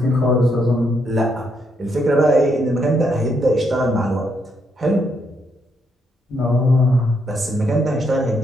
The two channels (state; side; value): normal; both; correlation 0.76